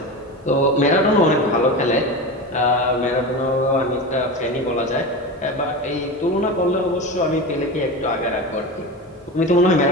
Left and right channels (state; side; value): normal; both; correlation 0.25